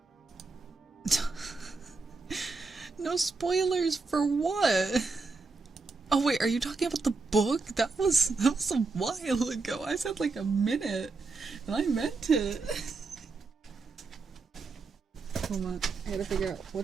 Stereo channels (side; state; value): left; quieter; 4.0 dB